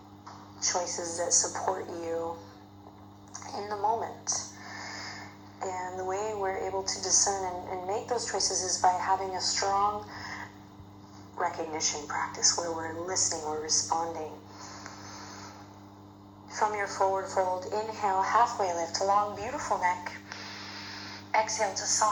choices that support you in the moment. And the way we're able to discern and make those choices is by having a strong recognition practice where we're listening, we're responding. From your forward fold, inhale, halfway lift, long, beautiful neck. Exhale to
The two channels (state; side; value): identical; both; correlation 1.00